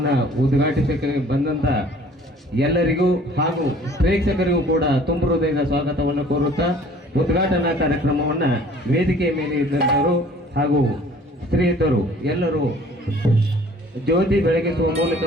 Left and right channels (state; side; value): normal; both; correlation 0.52